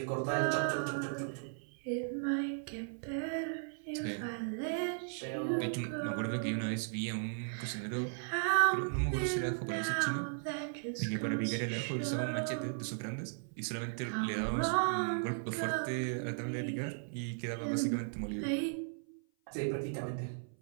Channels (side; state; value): left; silent; 54 dB below the other